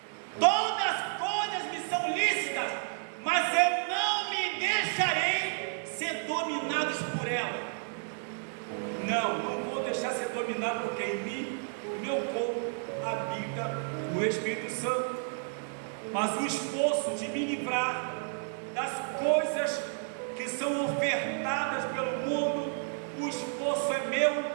Todas as coisas me são lícitas, mas eu não me deixarei ser dominados por ela. Não vou deixar ser dominado, porque em mim, meu corpo, habita o Espírito Santo. Mas o esforço de me livrar das coisas que são ofertadas pelo mundo, o esforço é meu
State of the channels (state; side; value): silent; left; 57 dB below the other